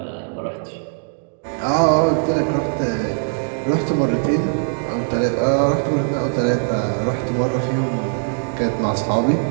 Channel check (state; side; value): silent; left; digital silence